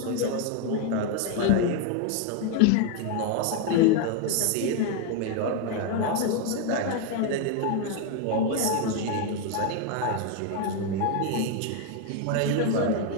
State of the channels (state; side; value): different; both; correlation 0.01